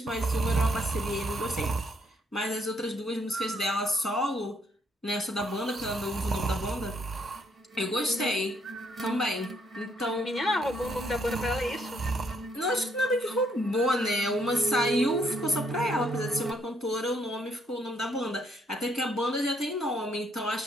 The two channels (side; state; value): both; normal; correlation 0.70